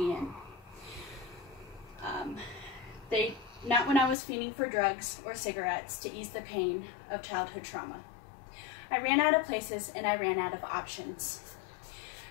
in. Not when I was fiending for drugs or cigarettes to ease the pain of childhood trauma. I ran out of places and I ran out of options.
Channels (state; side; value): drops out; right; at 4.2 s